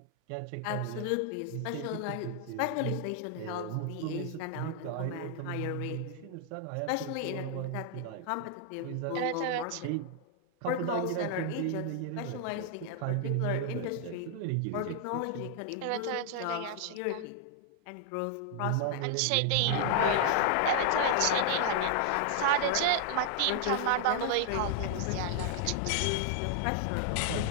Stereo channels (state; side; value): different; both; correlation 0.00